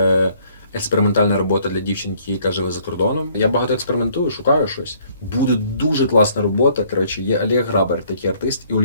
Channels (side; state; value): both; inverted; correlation -0.62